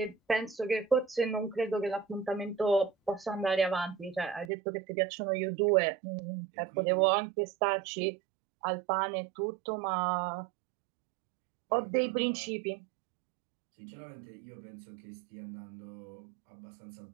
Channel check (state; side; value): drops out; left; at 4.5 s